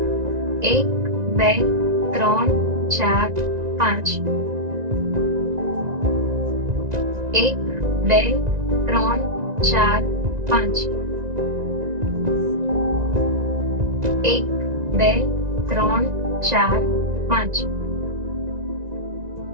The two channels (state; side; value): late; left; 1.9 ms